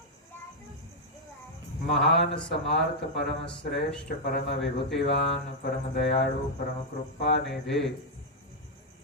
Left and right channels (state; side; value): normal; both; correlation -0.03